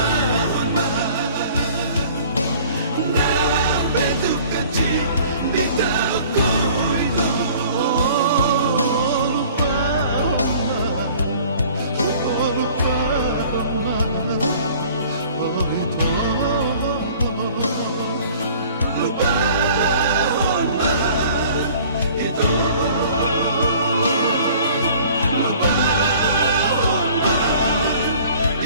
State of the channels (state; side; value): inverted; both; correlation -0.50